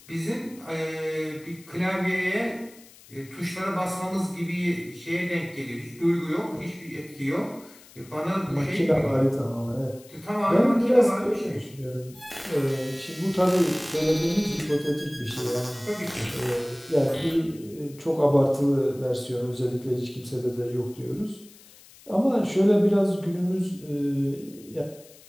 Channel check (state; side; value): noise; left; hiss, 23 dB below the sound